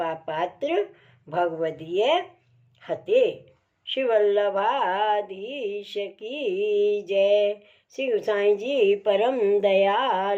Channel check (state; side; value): identical; both; correlation 1.00